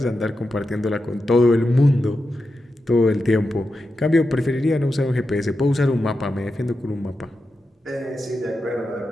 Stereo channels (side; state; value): both; normal; correlation 0.89